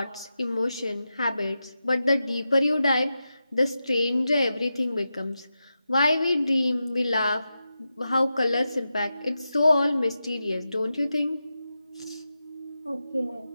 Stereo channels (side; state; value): both; inverted; correlation -0.90